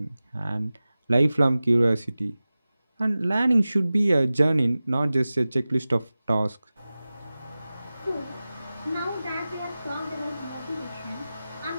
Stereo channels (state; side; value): inverted; both; correlation -0.96